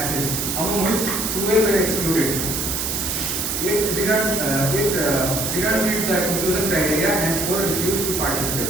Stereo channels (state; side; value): noise; right; hiss, 1 dB below the sound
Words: among which 12 were excluded. It didn't meet the inclusion criteria and 4 refused to